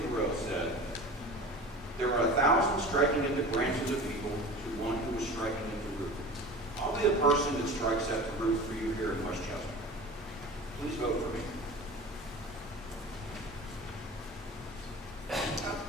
Thoreau said, "There are 1,000 striking at the branches of evil to one who is striking at the root." I'll be the person that strikes at the root for you here in Westchester. Please vote for me. Oh,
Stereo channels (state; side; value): normal; both; correlation 0.36